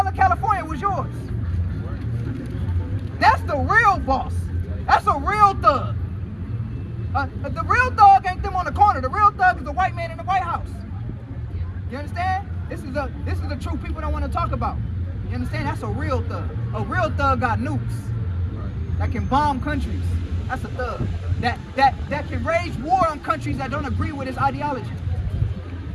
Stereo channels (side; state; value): both; identical; correlation 1.00